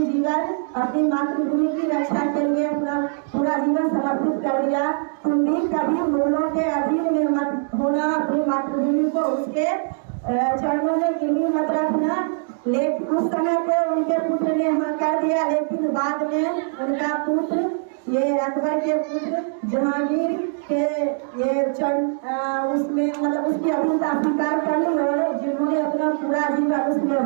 जीवन अपनी मातृभूमि की रक्षा के लिए अपना पूरा जीवन समर्पित कर दिया, तुम भी कभी मुगलों के अधीन में मत होना, अपनी मातृभूमि को उसके चरणों में गिरवी मत रखना। लेकिन उस समय तो उनके पुत्र ने हाँ कर दिया, लेकिन बाद में उनका पुत्र ये अकबर के पुत्र जहांगीर के ये उसमें मतलब उसकी अधीनता स्वीकार कर ली और जिन्होंने अपना पूरा जीवन उस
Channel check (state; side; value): silent; left; 64 dB below the other